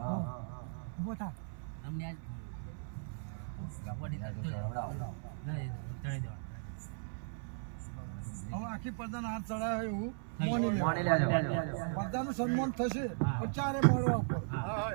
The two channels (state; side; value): silent; left; 53 dB below the other